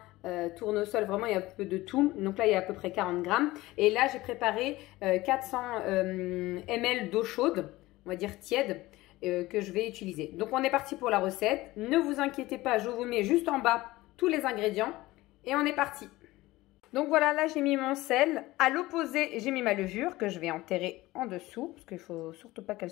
tournesol, vraiment il y a un peu de tout. Donc là, il y a à peu près 40 grammes. Et là, j'ai préparé 400 ml d'eau chaude, on va dire tiède, que je vais utiliser. Donc on est parti pour la recette. Ne vous inquiétez pas, je vous mets juste en bas tous les ingrédients. Et on est parti. Donc voilà, là j'ai mis mon sel. À l'opposé, j'ai mis ma levure que je vais enterrer en dessous. Parce qu'il ne faut surtout pas qu'elles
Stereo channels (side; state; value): right; quieter; 18.7 dB